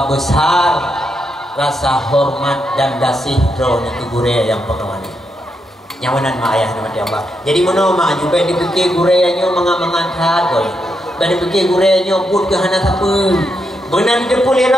besar rasa hormat dan kasih drone itu gure yang pengawani. Nyawanan mak ayah dirahmati Allah. Jadi mana mak juga dipikir gurenya mengat-mengat boy. Kada fikir gure nyobut ke hana siapa. Benan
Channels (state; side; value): normal; both; correlation 0.82